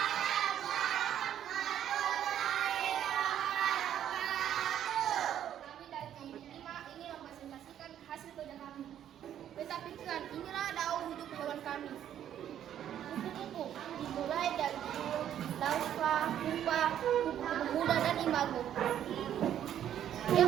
Betapkan, inilah daun hidup hewan kami. Kupu-kupu dimulai dari larva, pupa, kupu-kupu muda dan imago.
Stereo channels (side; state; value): left; quieter; 10.5 dB